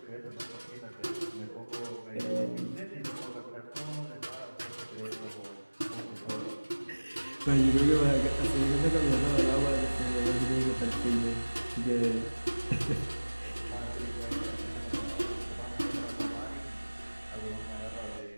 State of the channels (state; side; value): inverted; both; correlation -1.00